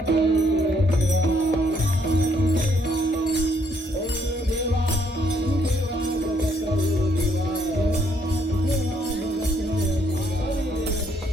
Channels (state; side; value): normal; both; correlation 0.69